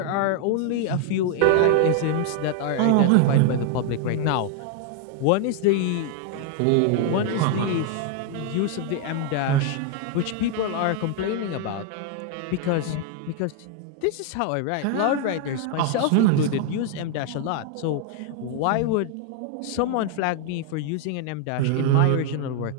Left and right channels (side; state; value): both; different; correlation 0.00